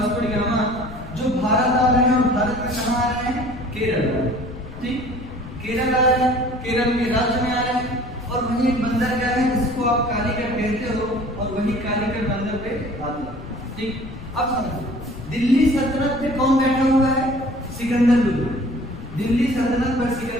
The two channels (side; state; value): left; noise; rumble, 13 dB below the sound